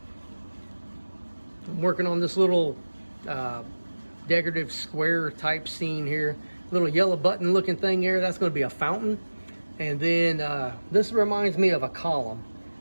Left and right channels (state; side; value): inverted; both; correlation -1.00